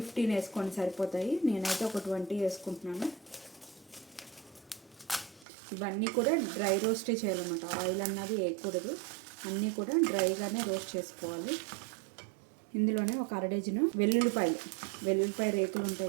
వేసుకోండి, సరిపోతాయి. నేనైతే ఒక 20 వేసుకుంటున్నాను. ఇవన్నీ కూడా డ్రై రోస్టే చేయాలన్నమాట, ఆయిల్ అన్నది వేయకూడదు. అన్నీ కూడా డ్రైగానే రోస్ట్ చేసుకోవాలి. ఇందులోనే ఒక 1/2 డజను వెల్లుల్లిపాయ రేకులు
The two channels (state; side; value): drops out; left; at 5.5 s